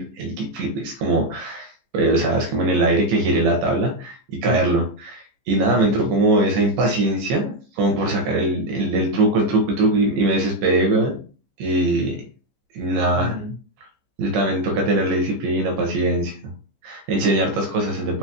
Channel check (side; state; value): left; late; 15 ms